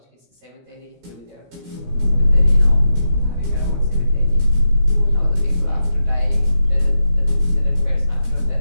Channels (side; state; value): left; late; 16 ms